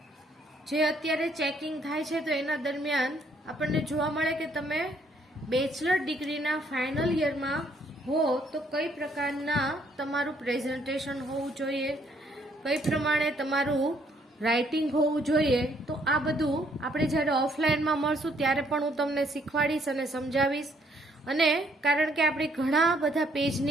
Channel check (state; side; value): normal; both; correlation 0.67